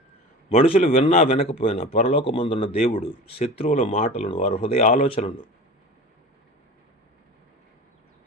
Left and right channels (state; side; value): normal; both; correlation 0.34